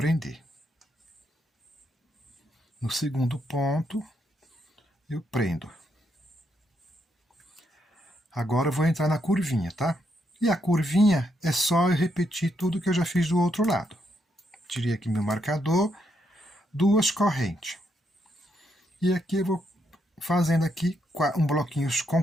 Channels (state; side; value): normal; both; correlation 0.78